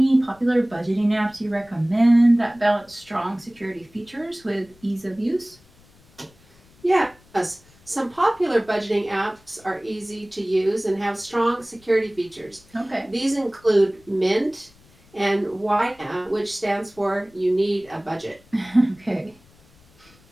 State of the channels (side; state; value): left; noise; rumble, 28 dB below the sound